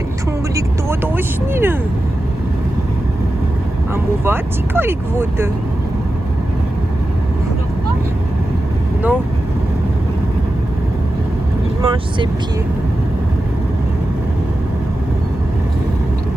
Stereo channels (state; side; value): normal; both; correlation 0.92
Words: են թունգլիկ տոտոշնիրը, ամուվացի կարիք ոտը, նո, իմանչ սեպի,